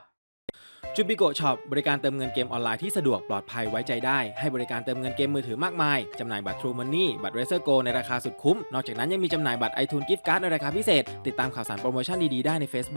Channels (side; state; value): both; inverted; correlation -1.00